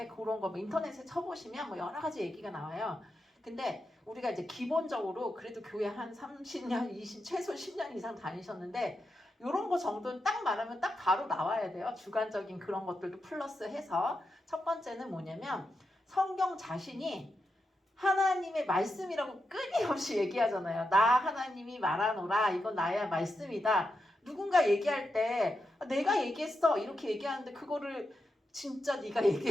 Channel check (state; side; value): normal; both; correlation 0.87